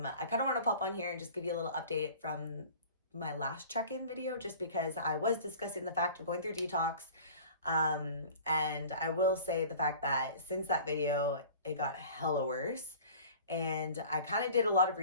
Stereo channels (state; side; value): inverted; both; correlation -0.43